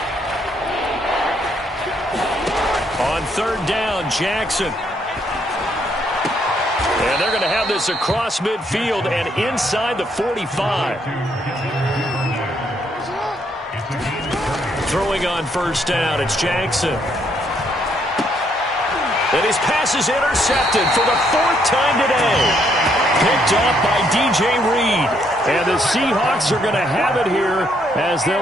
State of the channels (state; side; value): normal; both; correlation 0.72